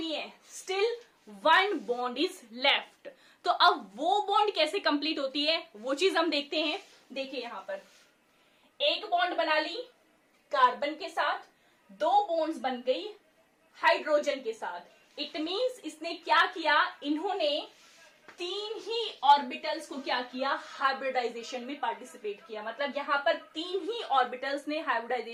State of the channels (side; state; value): both; identical; correlation 1.00